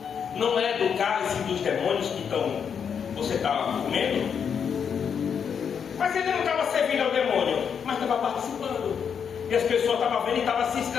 não é do cálice dos demônios que você está comendo? Mas ele não estava servindo ao demônio, mas estava participando. E as pessoas estavam vendo e estavam se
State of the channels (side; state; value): right; quieter; 7.2 dB